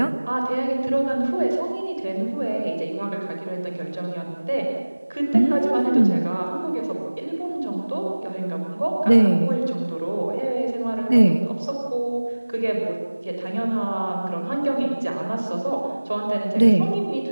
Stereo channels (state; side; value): inverted; both; correlation -1.00